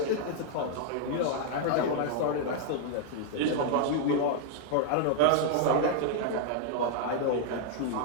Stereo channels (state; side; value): different; both; correlation 0.00